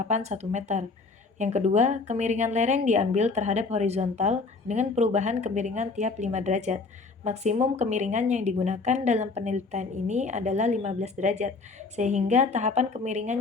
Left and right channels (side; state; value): right; quieter; 4.1 dB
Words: 1 meter. Yang kedua, kemiringan lereng diambil terhadap horizontal dengan perubahan kemiringan tiap 5 derajat. Maksimum kemiringan yang digunakan dalam penelitian ini adalah 15 derajat, sehingga tahapan kemiringan